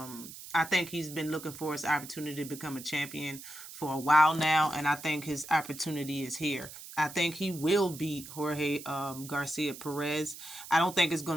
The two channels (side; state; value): right; noise; hiss, 14 dB below the sound